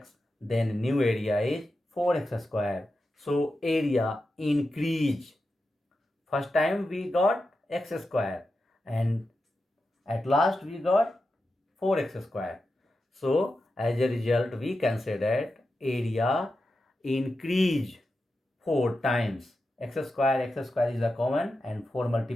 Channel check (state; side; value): normal; both; correlation 0.90